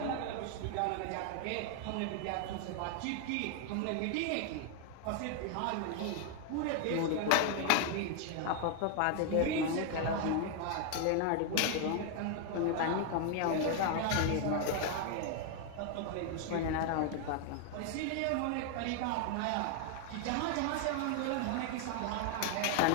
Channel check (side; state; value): both; different; correlation 0.00